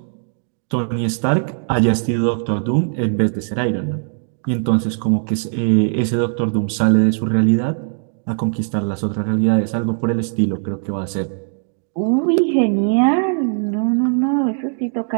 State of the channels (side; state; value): left; silent; 60 dB below the other